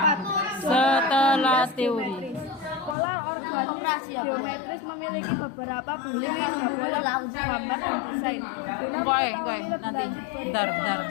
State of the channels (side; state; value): right; drops out; at 3.0 s